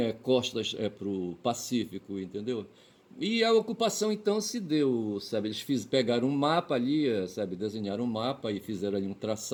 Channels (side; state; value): both; identical; correlation 1.00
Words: costas para o Pacífico, entendeu? E a ocupação então se deu, sabe? Pegaram um mapa ali, sabe? Desenharam um mapa e fizeram ali um